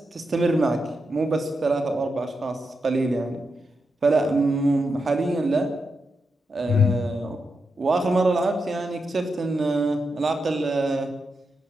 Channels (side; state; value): both; normal; correlation 0.86